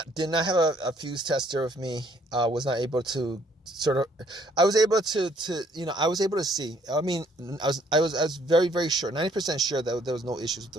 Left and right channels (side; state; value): both; normal; correlation 0.64